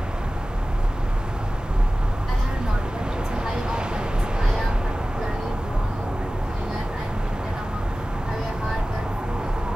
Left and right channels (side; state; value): both; normal; correlation 0.96